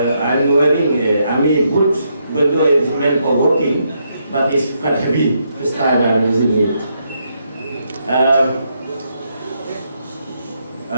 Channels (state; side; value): inverted; both; correlation -0.78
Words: wearing army boots, even though it's meant for walking, but it's quite heavy. First time I'm using it.